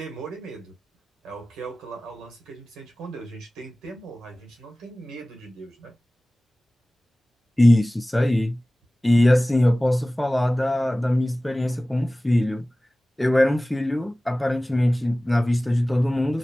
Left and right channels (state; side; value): normal; both; correlation 0.98